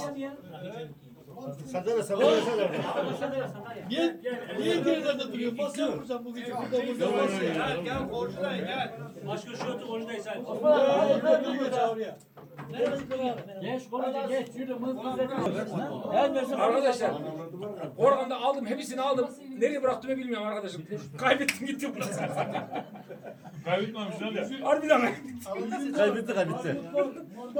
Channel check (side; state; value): both; identical; correlation 1.00